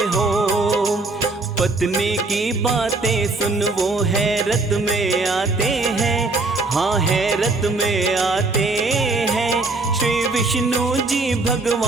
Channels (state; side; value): quieter; left; 3.4 dB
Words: हो। पत्नी की बातें सुन वो हैरत में आते हैं, हाँ हैरत में आते हैं। श्री विष्णु जी